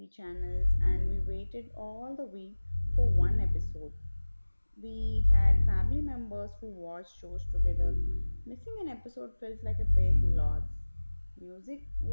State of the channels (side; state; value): both; inverted; correlation -1.00